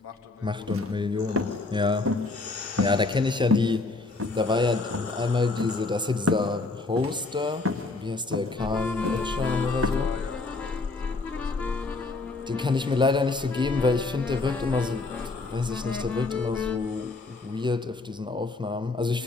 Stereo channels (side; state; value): right; quieter; 3.5 dB